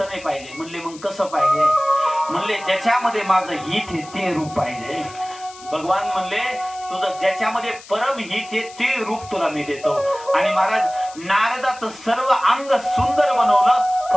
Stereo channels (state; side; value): noise; left; hiss, 19 dB below the sound